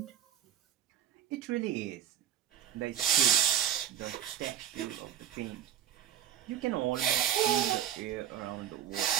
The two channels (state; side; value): quieter; left; 10.4 dB